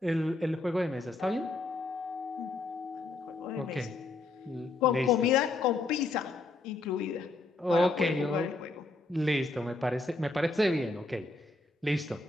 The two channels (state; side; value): quieter; right; 3.2 dB